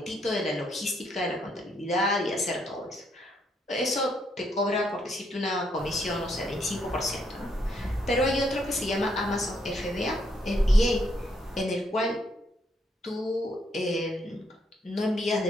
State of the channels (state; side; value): normal; both; correlation 0.74